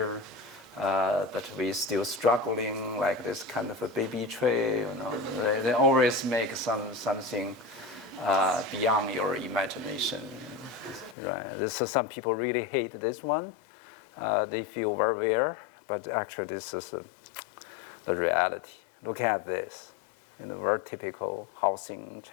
but we still struggling like this kind of a baby tree. They always make something beyond your imagination. Right? Some people really hate this one. They feel very weird. But actually, this is the reality. Look at this, very typical housing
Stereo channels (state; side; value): drops out; right; at 11.2 s